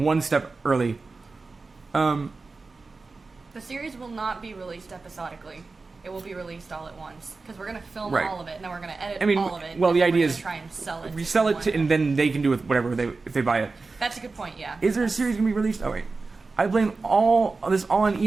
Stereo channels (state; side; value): quieter; left; 3.9 dB